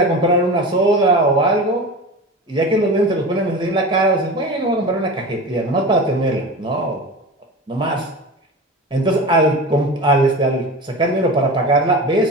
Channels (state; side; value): normal; both; correlation 0.30